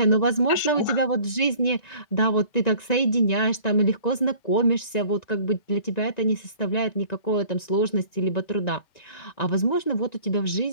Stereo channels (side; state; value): right; late; 1.9 ms